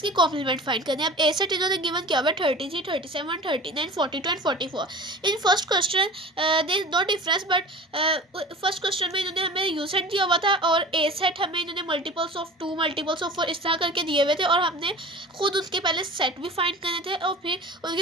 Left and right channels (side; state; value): both; normal; correlation 0.38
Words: कॉम्प्लीमेंट फाइंड करनी है। अब ए सेट इन्होंने गिवन किया हुआ है 33, 37, 39, 42 and 44। In first question there is no difference, but first question में इन्होंने हमें यू सेट दिया हुआ था और ए सेट हमें इन्होंने मल्टीपल्स ऑफ 2, मल्टीपल्स ऑफ 4 इस तरह करके दिए हुए थे और हमने खुद उसके पहले सेट भी फाइंड करने थे और फिर